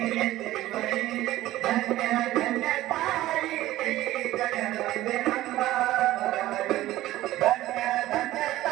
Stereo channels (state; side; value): quieter; left; 15.5 dB